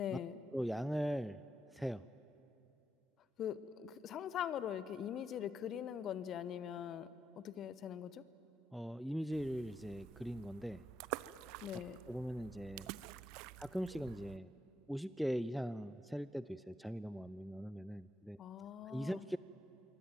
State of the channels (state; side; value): normal; both; correlation 0.80